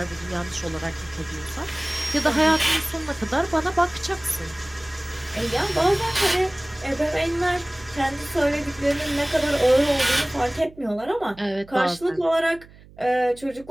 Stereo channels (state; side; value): noise; right; hum, 23 dB below the sound